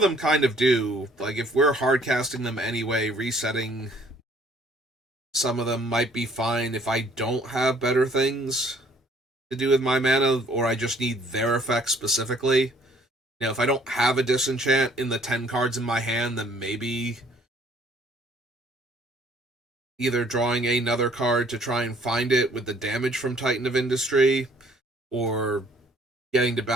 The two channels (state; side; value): normal; both; correlation 0.60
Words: them kind of do. Like, if we're hard casting them anyway, resetting some of them might be fine if I don't have better things to do with my mana, or I just need their effects specifically. You know, if I don't have a disenchant in the 10 cards in my hand, then maybe either drawing another card to try and find it with the damage from Titan of Industry, or getting to